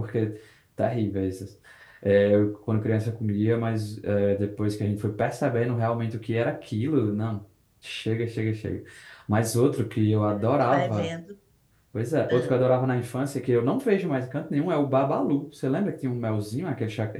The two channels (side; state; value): both; identical; correlation 1.00